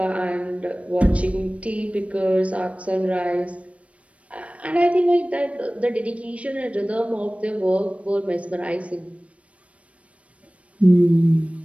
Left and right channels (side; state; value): left; late; 0.064 ms